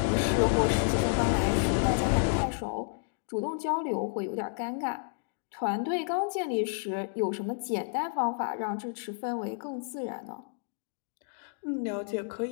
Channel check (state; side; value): silent; right; digital silence